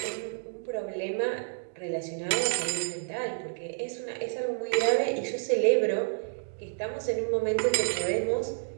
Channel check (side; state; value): left; silent; digital silence